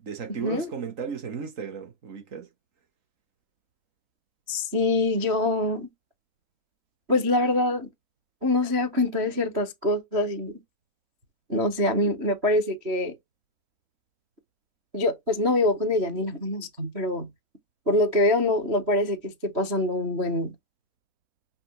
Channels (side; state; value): left; late; 3.1 ms